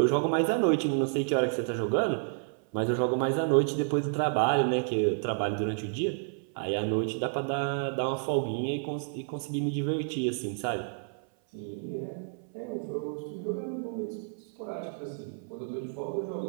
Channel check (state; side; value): silent; left; 58 dB below the other